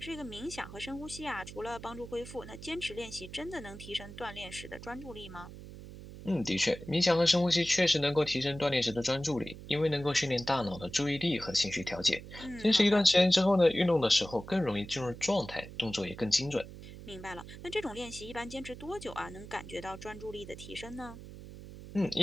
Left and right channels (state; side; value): noise; right; hum, 14 dB below the sound